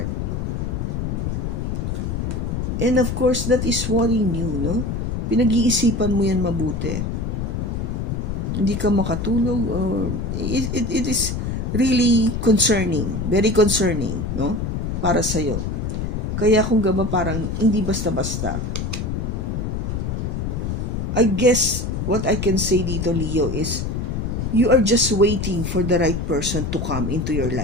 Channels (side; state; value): left; noise; rumble, 2 dB below the sound